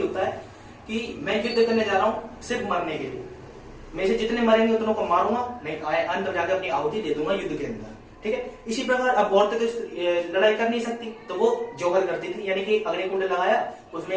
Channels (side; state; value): both; identical; correlation 1.00